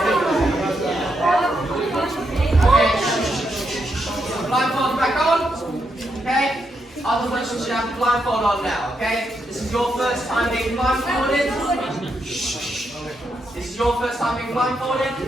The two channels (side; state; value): both; normal; correlation 0.81